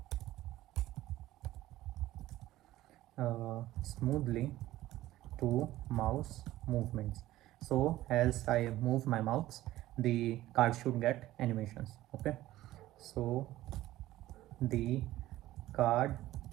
smoothly to mouse movements. So as I move my mouse, the card should get animations. Okay. So the card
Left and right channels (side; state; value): left; quieter; 15.5 dB